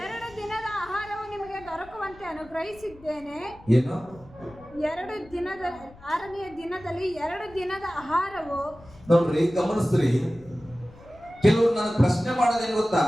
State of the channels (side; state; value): left; noise; rumble, 23 dB below the sound